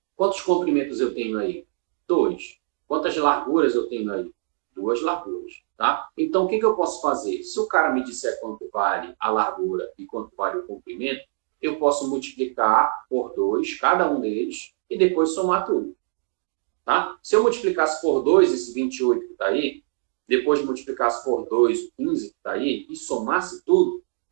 Quantos comprimentos eu tenho aí? 2. Quantas larguras eu tenho aí? 2 larguras. Tá? Então, o que eu posso fazer? Se o cara me disser quanto vale a largura e quanto vale o comprimento, eu posso multiplicar por 2, cada um deles, e depois somar tudo. Tá? Se eu multiplicasse por 2 esse 28 que está aí, depois multiplicasse por 2 o 15 que está aí, e somasse tudo,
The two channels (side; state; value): left; silent; digital silence